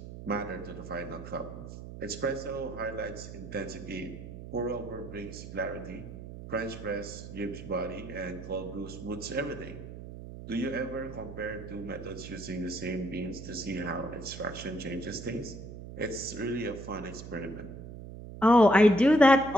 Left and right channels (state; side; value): noise; right; hum, 11 dB below the sound